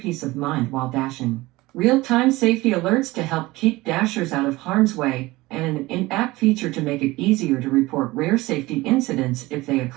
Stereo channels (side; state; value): left; quieter; 20.0 dB